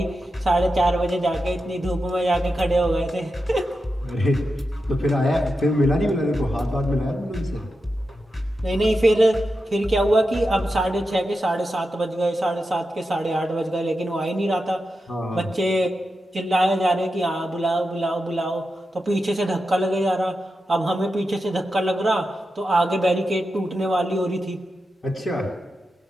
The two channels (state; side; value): normal; both; correlation 0.89